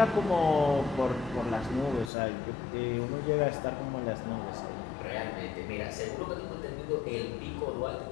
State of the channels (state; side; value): drops out; right; at 2.1 s